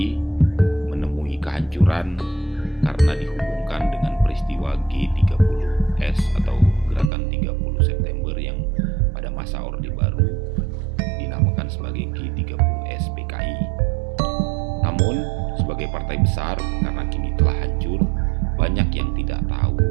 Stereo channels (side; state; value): left; drops out; at 7.1 s